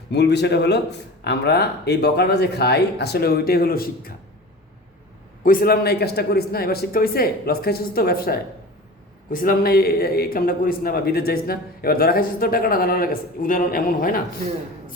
মূল বিষয়টা হলো আমরা এই বকাটা যে খাই আসলে ওইটাই হলো শিক্ষা। কইছিলাম না এই কাজটা করিস না, এবার শিক্ষা হইছে, লস খাইছিস তো ব্যবসায়, কইছিলাম না এই কামটা করিস না বা বিদেশ যাইস না, এবার ধরা খাইছিস তো টাকাটা দালালের কাছে, উদাহরণ এমন হয় না।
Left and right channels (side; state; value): both; normal; correlation 0.35